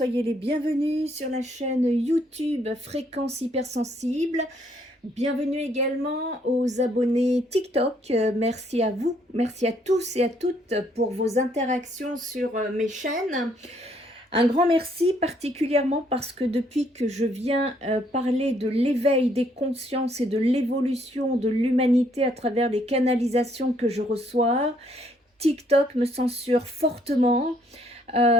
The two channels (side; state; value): both; normal; correlation 0.68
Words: les bienvenus sur la chaîne YouTube Fréquence Hypersensible. Bienvenue également aux abonnés TikTok. Merci à vous, merci à tous et à toutes pour vos interactions sur mes chaînes. Un grand merci particulièrement parce que depuis que je viens parler de l'éveil des consciences et de l'évolution de l'humanité à travers les canalisations que je reçois, TikTok me censure fortement.